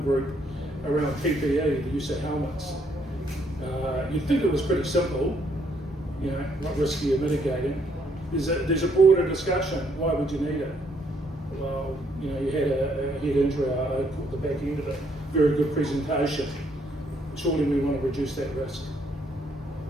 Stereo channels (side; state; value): both; normal; correlation 0.70